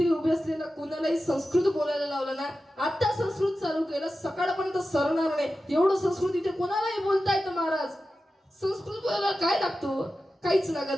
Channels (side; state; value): both; normal; correlation 0.93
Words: उभे असलेला कोणालाही संस्कृत बोलायला लावलं ना, आता संस्कृत चालू केलं सकाळपर्यंत सरणार नाही. एवढं संस्कृत इथे कोणालाही बोलता येतं महाराज. संस्कृत बोलायला काय लागतो? काहीच